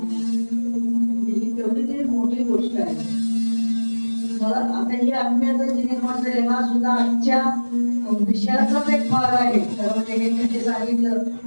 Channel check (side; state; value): both; inverted; correlation -1.00